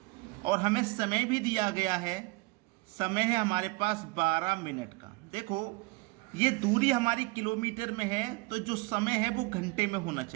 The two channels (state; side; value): quieter; left; 23.5 dB